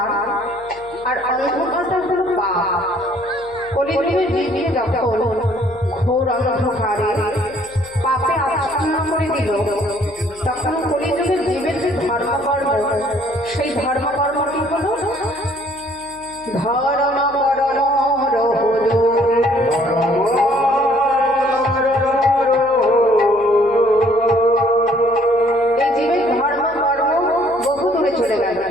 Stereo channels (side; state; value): left; noise; hum, 25 dB below the sound